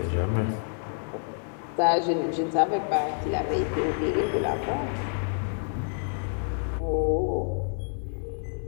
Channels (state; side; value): silent; right; 59 dB below the other